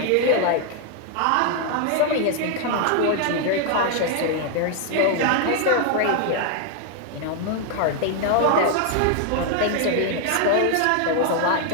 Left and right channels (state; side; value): different; both; correlation 0.00